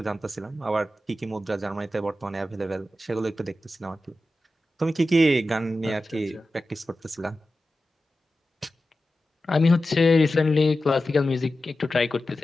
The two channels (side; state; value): both; normal; correlation 0.93